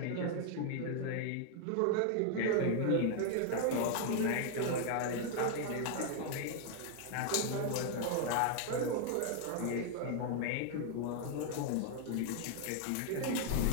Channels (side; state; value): both; different; correlation 0.00